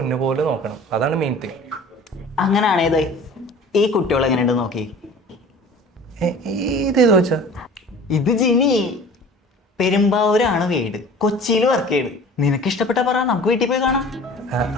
പോലെ നോക്കണം, അതാണ് മെയിൻ തിങ്. അങ്ങനെയാണേത് ഈ കുട്ടികൾ എങ്ങനെയുണ്ട് നോക്കി. ഇതേതോ വെച്ചാ? ഇത് ജിനി. പെരുമ്പാവൂരാണ് വീട്, കൊച്ചിയിൽ വർക്ക് ചെയ്ത്. നിനക്ക് ഇഷ്ടപ്പെട്ട പറ, നമുക്ക് വീട്ടിൽ പോയി കാണാം.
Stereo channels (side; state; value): both; normal; correlation 0.44